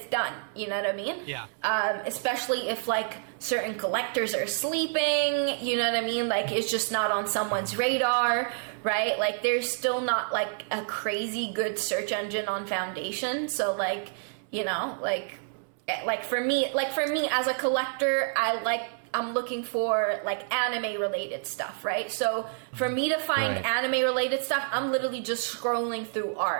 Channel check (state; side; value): silent; left; 59 dB below the other